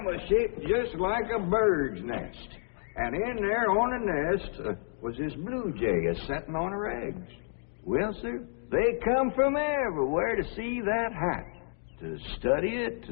that was shaped just like a bird's nest. And in there on the nest was this blue jay a-setting on her eggs. Well, sir, they come from everywhere to see that hat, to study it,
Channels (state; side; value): silent; right; digital silence